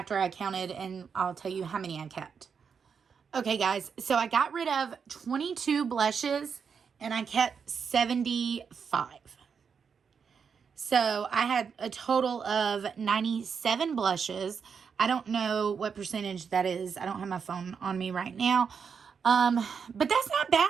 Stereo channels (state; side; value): quieter; left; 6.3 dB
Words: I counted and I'll tell you how many I kept. Okay, guys, so I got rid of 22 blushes and I kept 75. So I had a total of 97 blushes. I don't know what percentage that is. I don't have my phone on me right now. But that's not